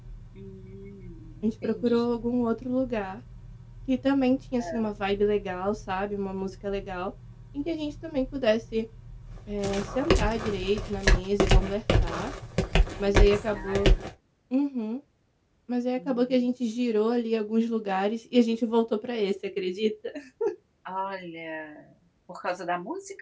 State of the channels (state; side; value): identical; both; correlation 1.00